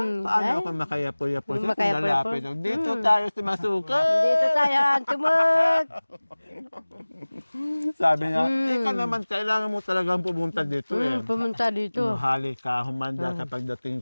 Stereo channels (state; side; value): inverted; both; correlation -1.00